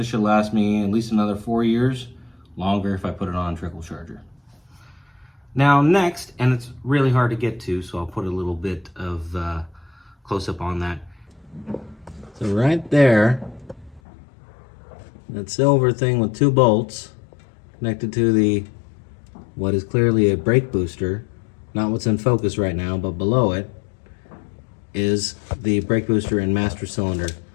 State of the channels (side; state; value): right; drops out; at 14.0 s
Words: should last me at least another 4 years, longer if I put it on a trickle charger. Now next, and it's really hard to get to, so I'll put a little bit of close up on that. So right there, that silver thing with two bolts connected to the what is clearly a brake booster, not what's in focus right now, but below it is the brake booster and master cylinder,